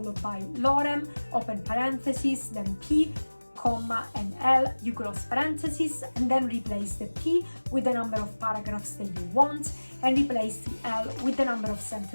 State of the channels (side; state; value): both; inverted; correlation -1.00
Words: by lorem, open parentheses, then p, comma and L, you close parentheses, and then replace the P with the number of paragraphs that you want, and replace the L with the number of